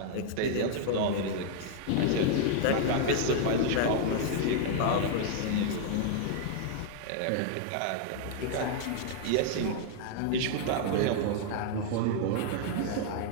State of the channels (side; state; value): both; different; correlation 0.00